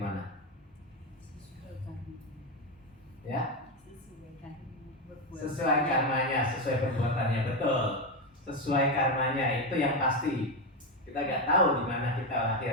mana? Ya? Sesuai karmanya, sesuai perbuatannya, betul. Sesuai karmanya, itu yang pasti. Kita nggak tahu di mana kita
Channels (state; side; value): normal; both; correlation 0.10